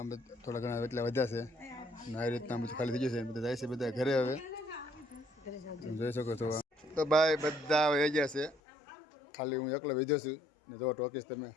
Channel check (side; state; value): right; drops out; at 8.6 s